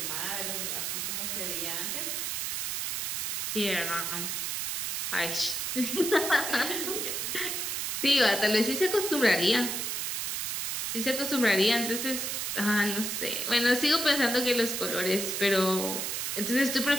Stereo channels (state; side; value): noise; right; hiss, 1 dB below the sound